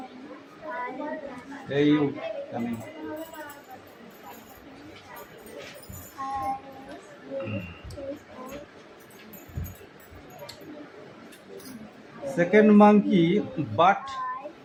Hey you, come in. Second monkey but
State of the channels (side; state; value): both; identical; correlation 1.00